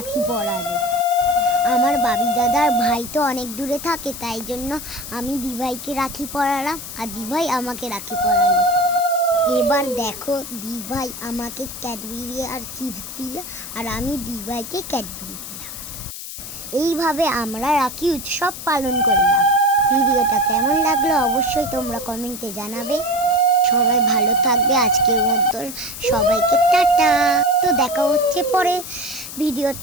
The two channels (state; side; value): noise; left; hiss, 10 dB below the sound